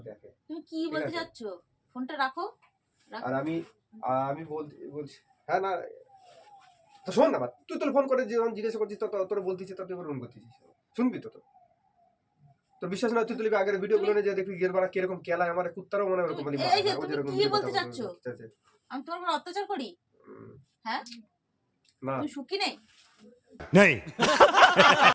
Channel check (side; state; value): both; identical; correlation 1.00